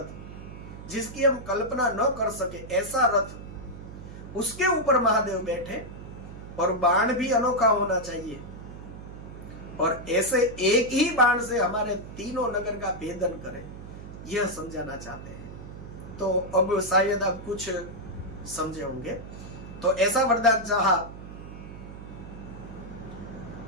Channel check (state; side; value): noise; right; hum, 13 dB below the sound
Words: जिसकी हम कल्पना न कर सके, ऐसा रथ, उसके ऊपर महादेव बैठे और बाण भी अनोखा होना चाहिए और ऐसे एक ही बाण से हमारे तीनों नगर का भेदन करें, यह समझाना चाहते हैं। तो अब शायद आप कुछ समझे होंगे। तो ऐसा वरदान चाहा